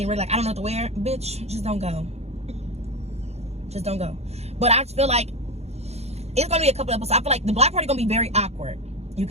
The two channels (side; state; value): left; late; 0.31 ms